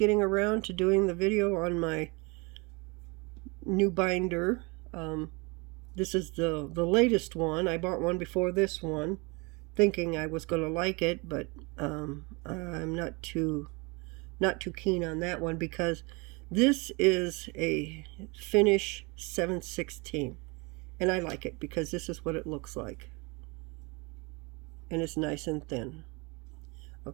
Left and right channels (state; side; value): quieter; left; 28.2 dB